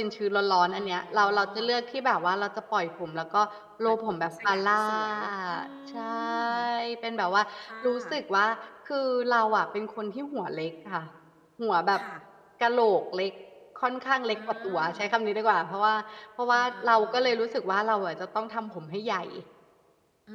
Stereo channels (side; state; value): both; identical; correlation 1.00